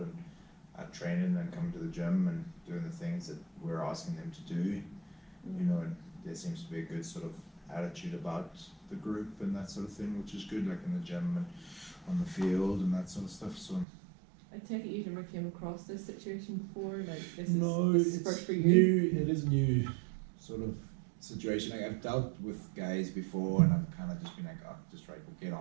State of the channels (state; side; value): drops out; left; at 13.9 s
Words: and training and coming to the gym and doing the things that we're asking them to do. And there seems to be a good sort of attitude about the group and that sort of thing, which is good, like in the gym and on the field and that sort of stuff. So I take it you've never came across this situation before, like this is first for you? New. It is new sort of situation. Like, I've dealt with guys before, and I've kind of just been like, oh, just right, we'll get